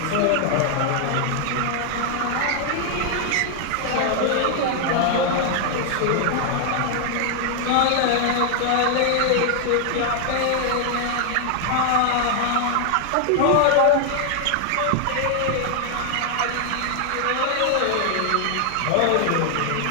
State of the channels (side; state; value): both; different; correlation 0.00